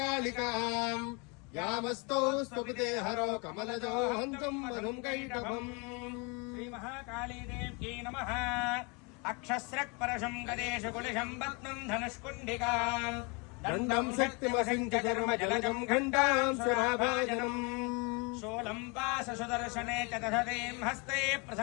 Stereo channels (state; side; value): quieter; right; 30.6 dB